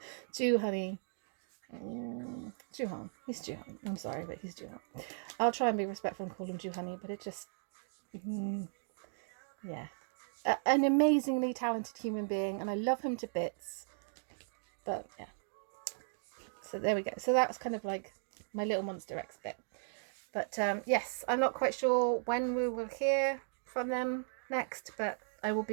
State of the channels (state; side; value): silent; left; digital silence